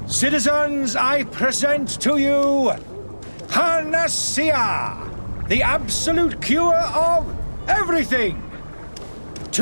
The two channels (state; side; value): inverted; both; correlation -1.00